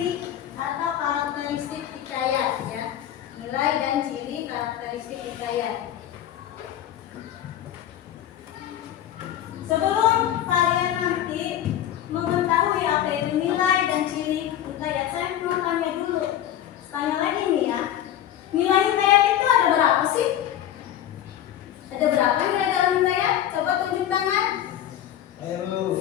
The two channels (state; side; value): quieter; right; 11.4 dB